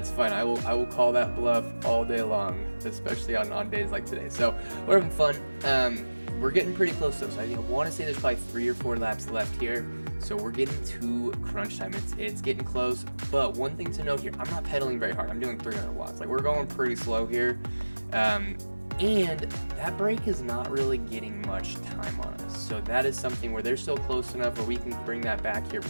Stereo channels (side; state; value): both; inverted; correlation -1.00